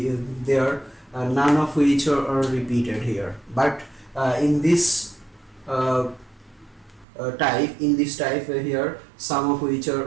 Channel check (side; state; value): left; drops out; at 7.1 s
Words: of which are repeated here, but in this type here some of which are